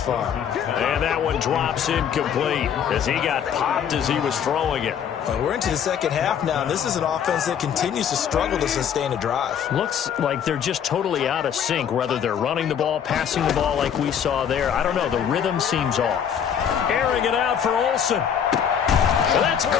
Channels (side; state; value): right; quieter; 8.3 dB